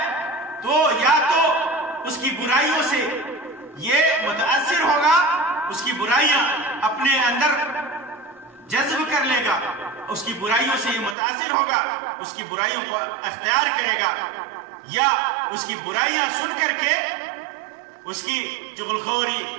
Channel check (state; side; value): drops out; left; at 11.2 s